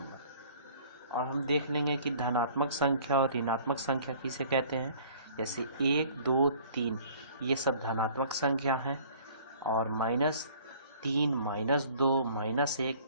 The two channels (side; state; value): both; inverted; correlation -0.52